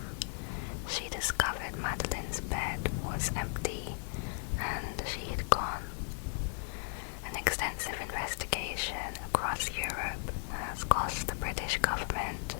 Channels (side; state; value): right; silent; 54 dB below the other